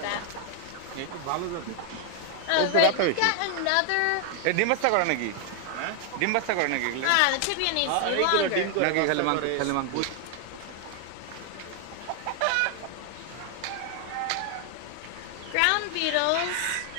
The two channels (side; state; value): both; different; correlation 0.00